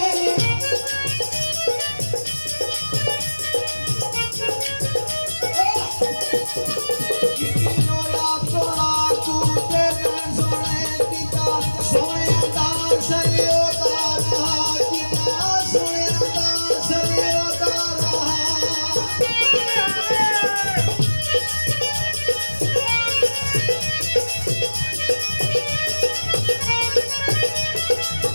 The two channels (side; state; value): both; inverted; correlation -1.00